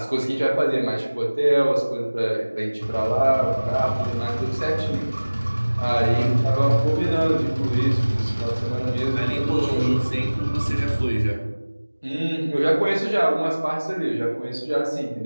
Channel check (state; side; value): inverted; both; correlation -1.00